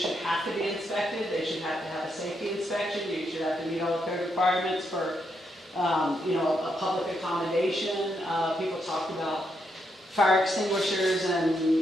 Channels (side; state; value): both; normal; correlation 0.80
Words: have to be inspected. They should have to have a safety inspection. You should have to meet all the code requirements for, a public accommodation. People talked about fire extinguishers and,